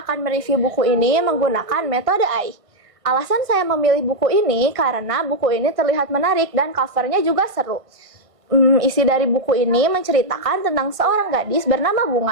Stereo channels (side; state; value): left; late; 1.5 ms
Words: akan mereview buku ini menggunakan metode AI. Alasan saya memilih buku ini karena buku ini terlihat menarik dan covernya juga seru. Isi dari buku ini menceritakan tentang seorang gadis bernama